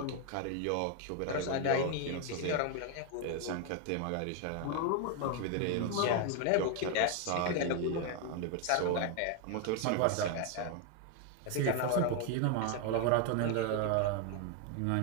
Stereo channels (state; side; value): different; both; correlation 0.01